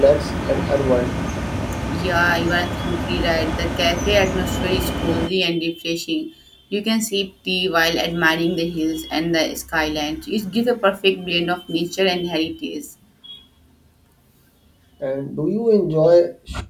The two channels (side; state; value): both; identical; correlation 1.00